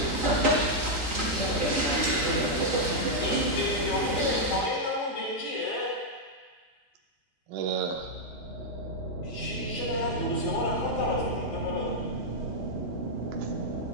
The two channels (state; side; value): normal; both; correlation -0.03